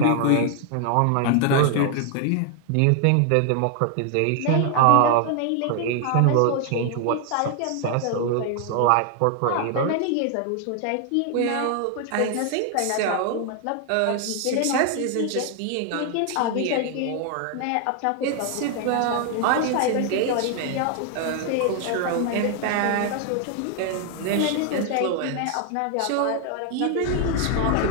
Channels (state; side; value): different; both; correlation 0.00